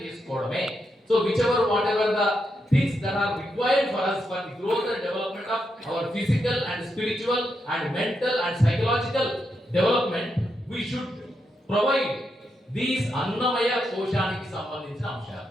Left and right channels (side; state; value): both; normal; correlation 0.83